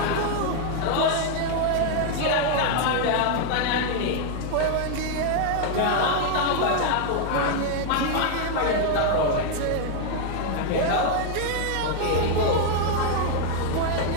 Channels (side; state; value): both; different; correlation 0.00